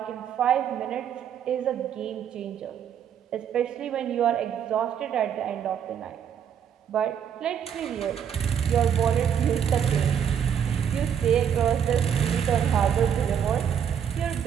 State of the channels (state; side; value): quieter; left; 8.4 dB